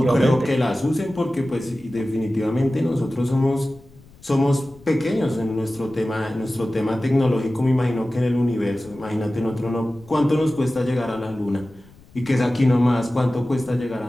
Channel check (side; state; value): left; noise; rumble, 25 dB below the sound